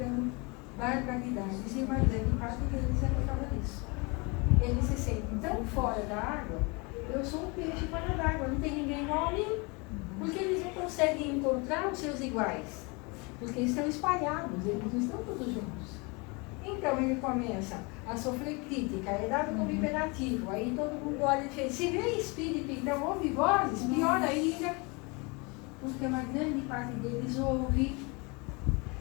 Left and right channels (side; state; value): right; quieter; 28.9 dB